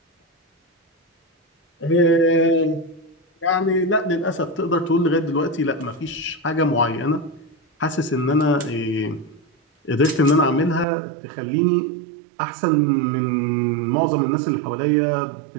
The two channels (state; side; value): drops out; left; at 10.9 s